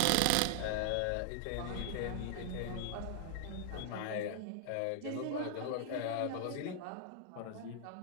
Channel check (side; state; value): both; different; correlation -0.01